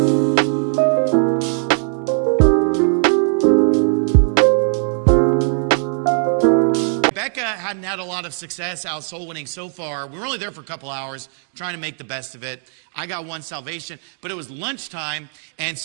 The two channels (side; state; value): left; silent; 60 dB below the other